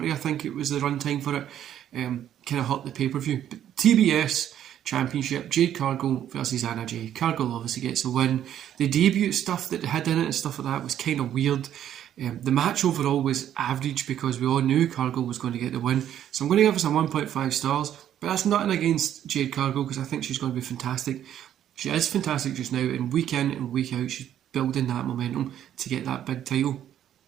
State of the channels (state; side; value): quieter; left; 10.7 dB